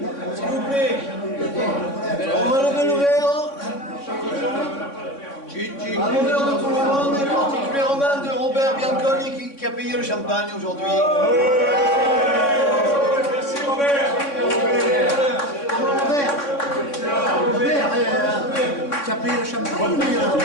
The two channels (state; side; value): late; right; 3.6 ms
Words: S'il vous plaît, on va lever le verre. Gigi. champagne aujourd'hui. Merci Robert. Robert, tu as payé le champagne?